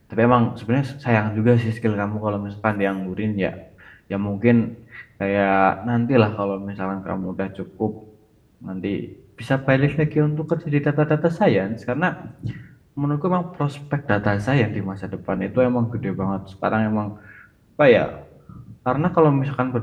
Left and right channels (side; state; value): both; identical; correlation 1.00